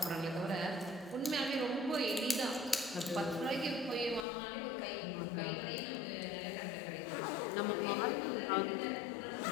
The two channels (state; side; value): drops out; right; at 4.2 s